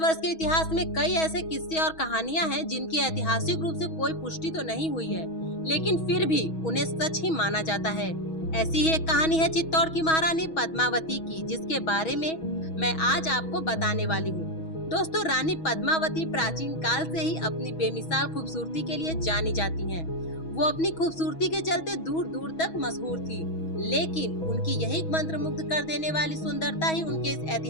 के इतिहास में कई ऐसे किस्से और कहानियां हैं जिनकी ऐतिहासिक रूप से कोई पुष्टि तो नहीं हुई है, लेकिन फिर भी उन्हें सच ही माना जाता है। ऐसी ही एक कहानी है चित्तौड़ की महारानी पद्मावती की, जिसके बारे में मैं आज आपको बताने वाली हूँ। दोस्तों, रानी पद्मावती प्राचीन काल से ही अपनी बेमिसाल खूबसूरती के लिए जानी जाती हैं। वो अपनी खूबसूरती के चलते दूर दूर तक मशहूर थी, लेकिन उनकी यही मंत्रमुग्ध कर देने वाली सुंदरता ही उनके इस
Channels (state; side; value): late; right; 6.2 ms